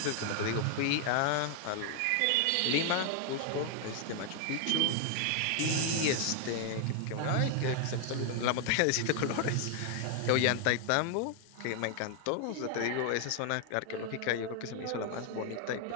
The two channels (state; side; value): different; both; correlation 0.00